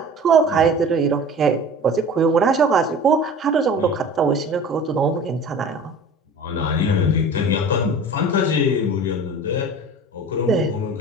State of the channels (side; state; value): both; normal; correlation 0.40